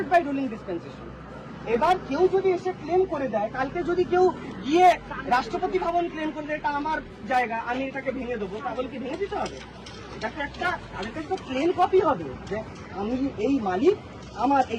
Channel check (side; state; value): both; identical; correlation 1.00